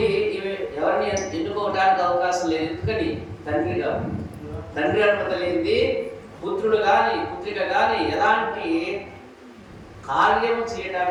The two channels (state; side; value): identical; both; correlation 1.00